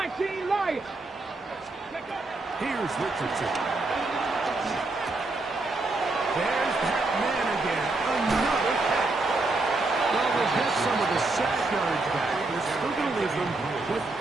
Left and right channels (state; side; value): quieter; left; 3.2 dB